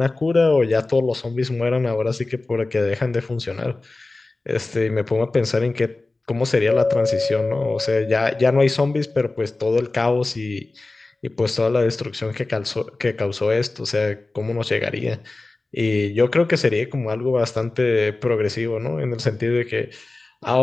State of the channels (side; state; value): right; quieter; 3.2 dB